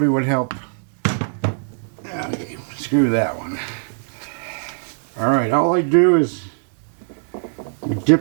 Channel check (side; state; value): left; silent; 64 dB below the other